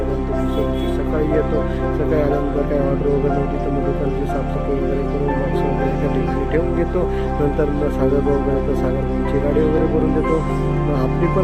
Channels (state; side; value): identical; both; correlation 1.00